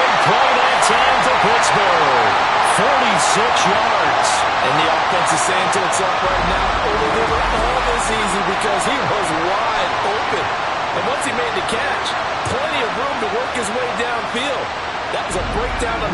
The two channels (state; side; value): identical; both; correlation 1.00